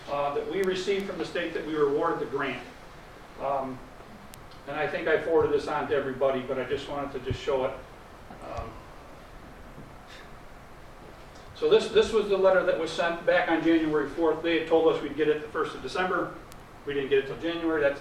that we received from the state that we were awarded the grant. And I think I forwarded this on to everybody, but I just wanted to just show it. So this was the letter that was sent back on January 4th. They had told us we'd get it the 1st of December. We didn't get it till January. That's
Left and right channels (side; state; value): both; identical; correlation 1.00